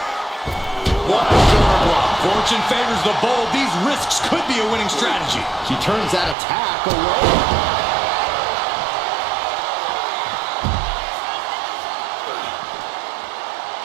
What a shoulder block. Fortune favors the bold. These risks could be a winning strategy. She turns that attack away.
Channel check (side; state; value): left; drops out; at 6.4 s